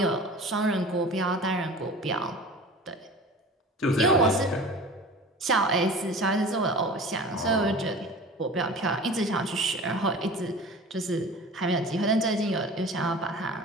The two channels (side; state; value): both; normal; correlation 0.39